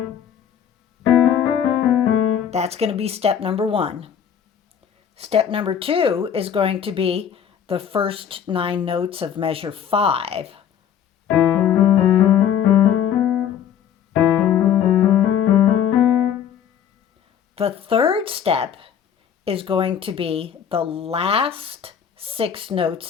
That's going to be step number 1. Step number 2 is going to be the first 9 notes of measure 5. The third step is going to be the last 6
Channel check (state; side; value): quieter; right; 8.8 dB